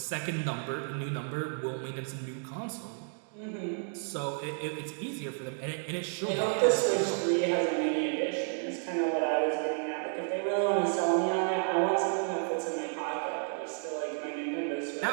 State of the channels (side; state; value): left; silent; 57 dB below the other